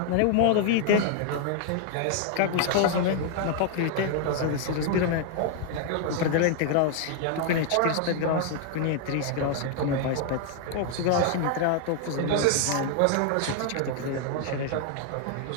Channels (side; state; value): both; different; correlation 0.00